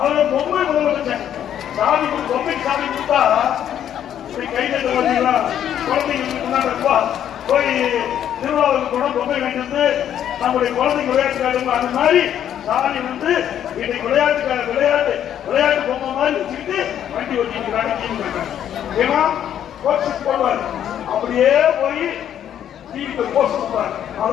அவரை பொம்மை முதலமைச்சர் சாமி பொம்மை சாமி கொடுத்தா கைது குழந்தைங்களா குழந்தைங்க போய் திருவிழாவுக்கு கூட பொம்மை வாங்கிட்டு நம்முடைய குழந்தைங்க விளையாட்டு அந்த மாதிரி சாமி வந்து இன்னைக்கு விளையாட்டு பொம்மை மாதிரி வச்சுக்கிட்டு வண்டி ஓட்டிக்கிறாங்க. ஏன்னா போஸ்ட் போடுவார் அப்படியே போய் டிவிக்கு போஸ்ட் கொடுப்பார்.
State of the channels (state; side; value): quieter; right; 10.1 dB